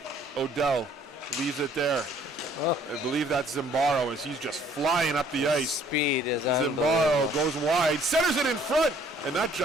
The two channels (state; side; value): normal; both; correlation 0.59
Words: Odell leaves it there. I believe that's Zimbarro as he's just flying up the ice. Speed is Zimbarro goes wide, centers it in front, and that